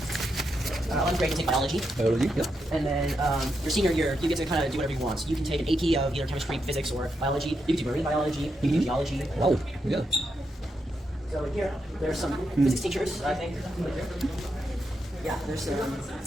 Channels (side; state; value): both; normal; correlation 0.83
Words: 11th grade, you take biology. Biology, yeah. And then your senior year, you get to kind of do whatever you want. So you can take an AP of either chemistry, physics, or biology. You can do marine biology. You can do geology. Wow, yeah. So here, there's some physics teachers, I think. Yeah, there's some